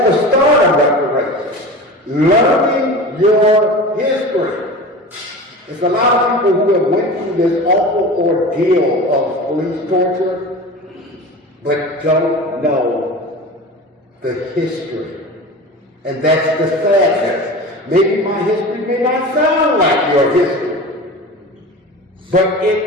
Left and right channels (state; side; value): normal; both; correlation 0.33